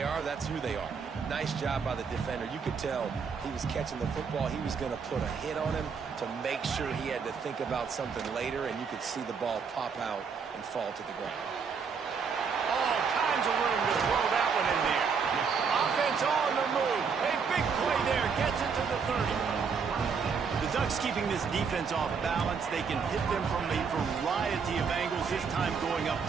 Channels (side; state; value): left; quieter; 5.9 dB